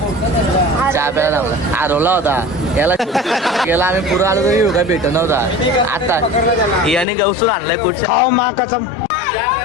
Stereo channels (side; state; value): right; drops out; at 7.1 s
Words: चहा प्यायला आम्हाला हरवला होता. याला गेला आम्ही पुढे आलो तरी काय भेट नव्हता. आता याने गवसून आणलाय कुठच्या खाओ माँ कसम.